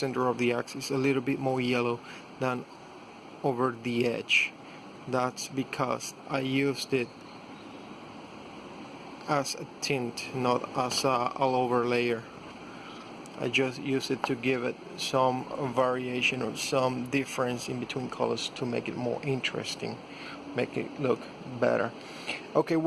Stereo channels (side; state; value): both; identical; correlation 1.00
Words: of the axe. It's a little bit more yellow than over the edge. That's because I used it as a tint, not as a all over layer. I just used it to give it some variation or some difference in between colors to make it more interesting, make it look better. Okay,